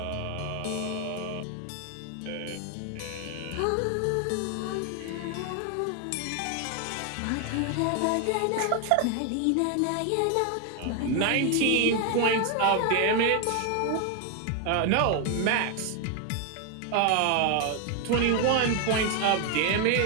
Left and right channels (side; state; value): both; different; correlation 0.01